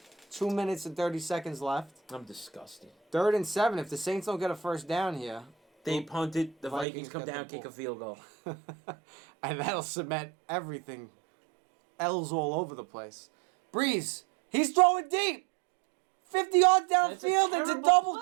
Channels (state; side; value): drops out; left; at 6.9 s